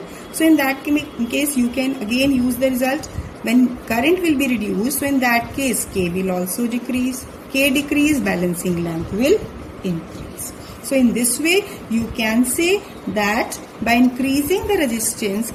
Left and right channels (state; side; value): identical; both; correlation 1.00